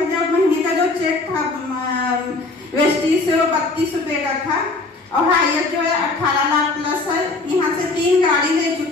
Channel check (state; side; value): quieter; right; 3.4 dB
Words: महीने का जो चेक था वेस्टीज से वो 32 रुपए का था और हायर जो है 18 लाख प्लस है। यहाँ से 3 गाड़ी ले